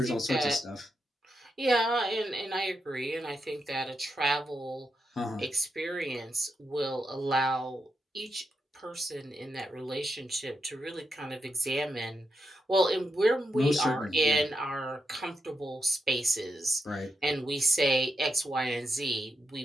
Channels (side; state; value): both; normal; correlation 0.85